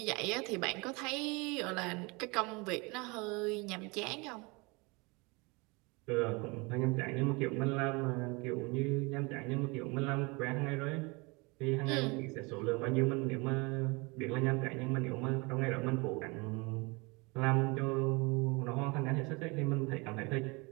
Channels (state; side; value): quieter; left; 27.4 dB